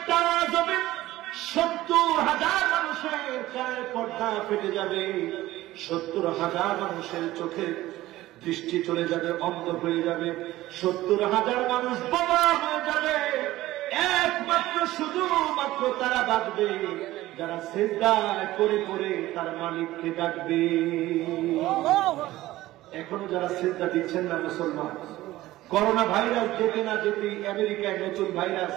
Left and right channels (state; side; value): quieter; left; 16.4 dB